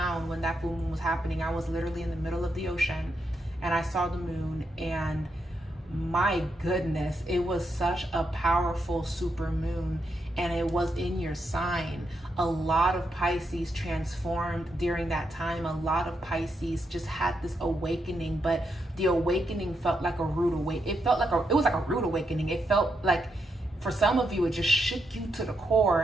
when that full moon was happening. I was literally in the middle of the ocean, and I saw the moon, and my goodness, it was such a powerful super moon, and it was in your sign. A lot of Pisces transformed during that time. A lot of Pisces just had this awakening, but the awakening felt like a rude awakening. It was like a rude awakening. It felt like, for some of you, it just shook you to the core,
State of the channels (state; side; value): normal; both; correlation 0.82